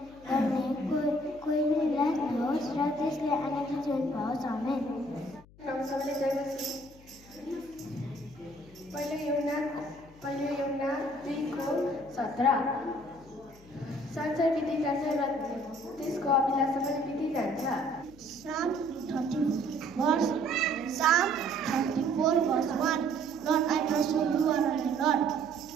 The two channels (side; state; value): left; noise; hum, 24 dB below the sound